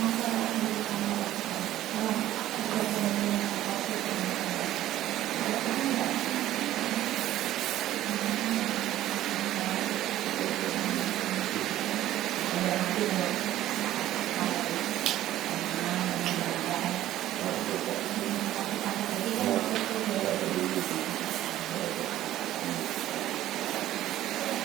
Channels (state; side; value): quieter; left; 13.7 dB